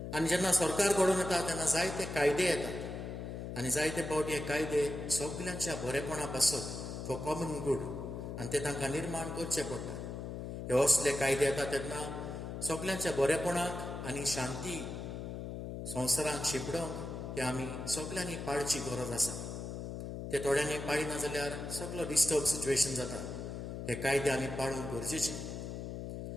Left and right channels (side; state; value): left; noise; hum, 6 dB below the sound